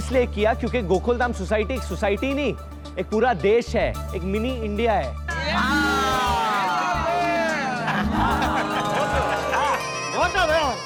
किया क्योंकि गोकुलधाम सोसाइटी एक सोसाइटी नहीं, एक पूरा देश है, एक मिनी इंडिया है।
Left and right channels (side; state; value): both; identical; correlation 1.00